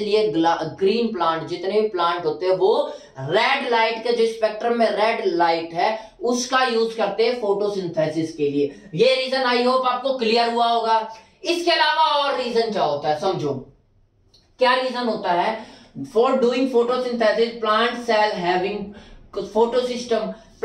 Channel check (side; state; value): both; identical; correlation 1.00